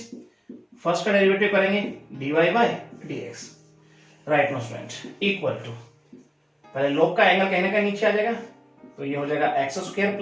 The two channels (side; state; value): both; identical; correlation 1.00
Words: first का डेरिवेटिव करेंगे dy by dx, right no student, equal to, पहले लॉग का एंगल कहीं ना कहीं नीचे आ जाएगा, तो ये हो जाएगा x square